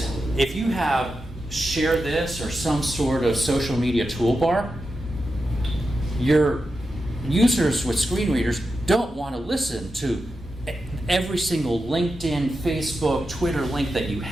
if you have share this or some sort of social media toolbar, your users with screen readers don't want to listen to every single LinkedIn, Facebook, Twitter link that you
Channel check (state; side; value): normal; both; correlation 0.89